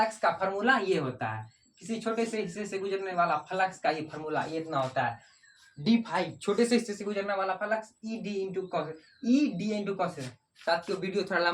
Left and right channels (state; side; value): identical; both; correlation 1.00